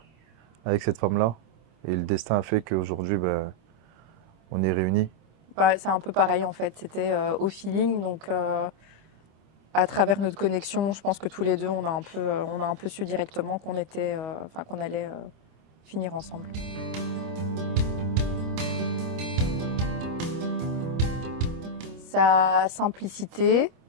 cette femme-là. Et le destin a fait qu'aujourd'hui, ben, on est réunis. Bah, c'est un peu pareil en fait, c'était au feeling, donc à travers notre connexion, je pense que tous les deux, on a un peu su directement qu'on était, enfin qu'on allait finir ensemble. Sa simplicité,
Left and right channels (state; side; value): late; left; 26 ms